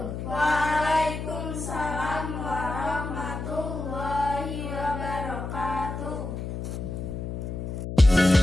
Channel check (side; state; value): left; noise; hum, 6 dB below the sound